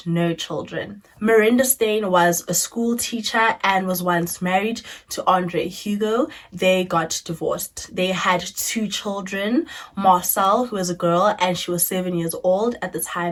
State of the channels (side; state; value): both; identical; correlation 1.00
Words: no children. Miranda Steyn was a school teacher and was once married to Andre Hugo. They got divorced. They had 2 children, Marcel, who was a girl, and she was 7 years old at the